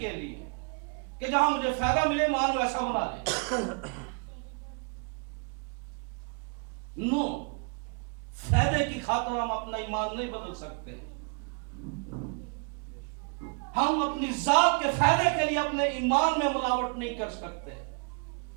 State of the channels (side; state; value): left; quieter; 38.4 dB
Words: لیے, کہ جہاں مجھے فائدہ ملے ایمان ویسا بنا لے. نو, فائدے کی خاطر ہم اپنا ایمان نہیں بدل سکتے. ہم اپنی ذات کے فائدے کے لیے اپنے ایمان میں ملاوٹ نہیں کر سکتے.